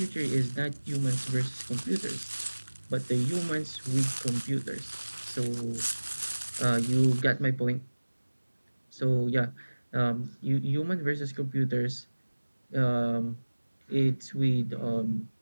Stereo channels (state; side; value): inverted; both; correlation -1.00